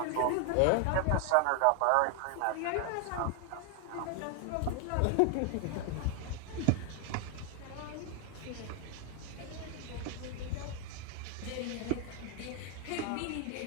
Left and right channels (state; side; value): different; both; correlation 0.00